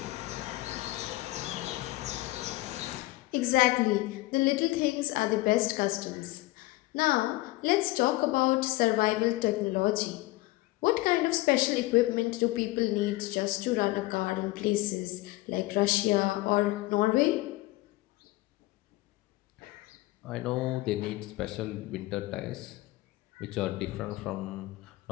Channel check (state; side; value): quieter; right; 19.7 dB